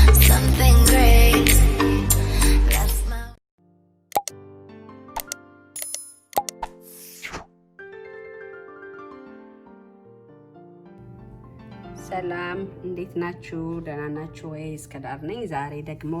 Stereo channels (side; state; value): both; identical; correlation 1.00